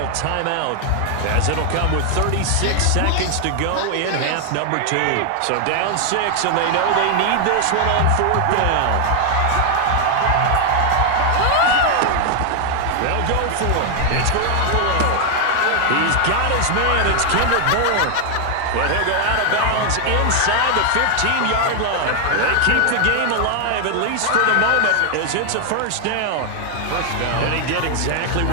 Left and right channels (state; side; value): different; both; correlation 0.00